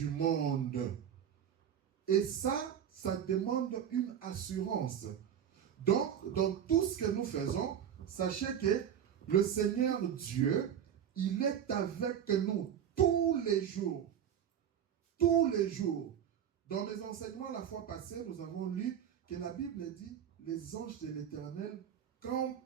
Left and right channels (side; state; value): left; quieter; 9.1 dB